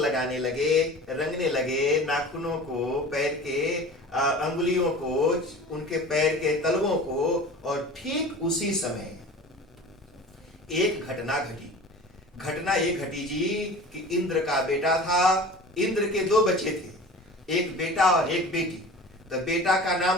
लगे, रंगने लगे, नाखूनों को, पैर के अंगुलियों को, उनके पैर के तलवों को। और ठीक उसी समय एक घटना घटी। घटना ये घटी जी कि इंद्र का बेटा था। इंद्र के 2 बच्चे थे, एक बेटा और एक बेटी। तो बेटा का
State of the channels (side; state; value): both; normal; correlation 0.38